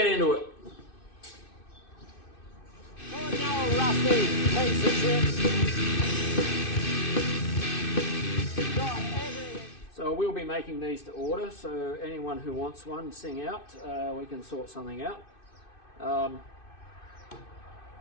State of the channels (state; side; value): late; right; 2.6 ms